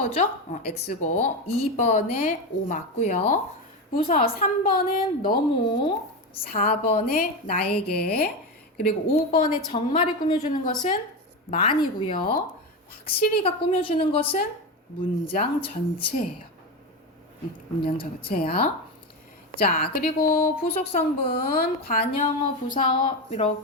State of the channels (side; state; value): both; normal; correlation 0.16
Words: X고 2번에 O 맞고요. 부사 3번은 너무, 4번에 나에게, 그리고 5번에 정말을 꾸며주는 것은 많이고요. 확실히가 꾸며주는 것은 문장 전체예요. 문장 전체야. 자, 그리고 부속 성분, 관형어, 부사어